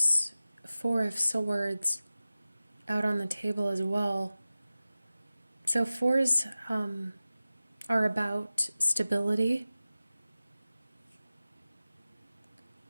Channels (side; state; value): both; inverted; correlation -0.96